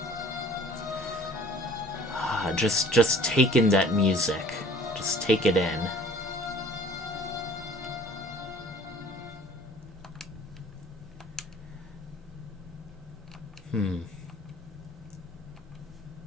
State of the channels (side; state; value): both; normal; correlation 0.51